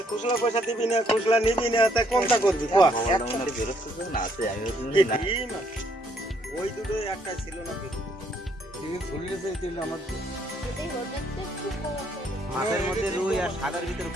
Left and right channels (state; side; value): normal; both; correlation 0.68